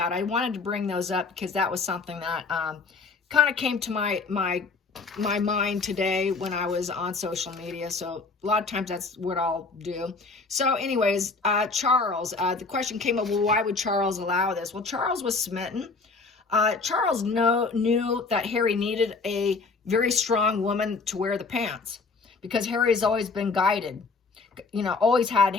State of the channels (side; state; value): right; quieter; 4.2 dB